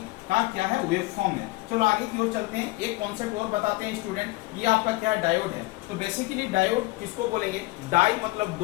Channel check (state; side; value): quieter; right; 20.9 dB